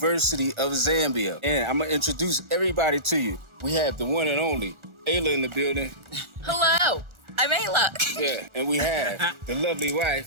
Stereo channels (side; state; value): left; late; 1.4 ms